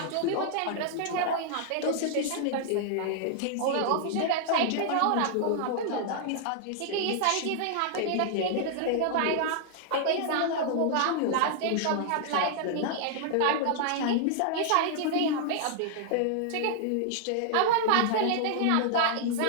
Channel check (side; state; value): both; different; correlation -0.01